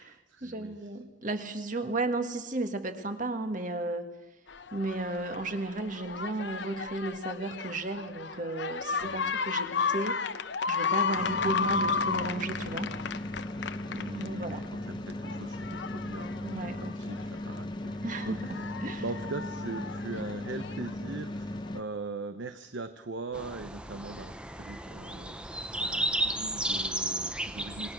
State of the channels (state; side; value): normal; both; correlation 0.18